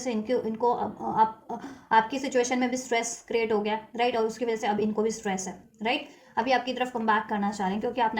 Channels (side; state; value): both; identical; correlation 1.00